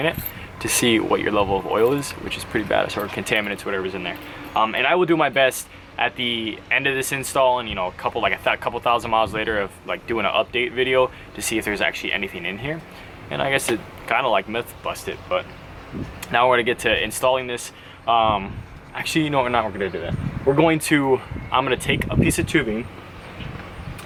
it to see what your level of oil is, which is pretty bad, or contaminants, whatever's in there. And I will do my best at the end of this install, and you know, a couple thousand miles later, of like doing an update video to see if there's actually anything in here. And I guess it kind of like myth busted, but now we're gonna get to installing this. Actually, you know what, we're gonna do that. I'm gonna take a piece of tubing,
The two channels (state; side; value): identical; both; correlation 1.00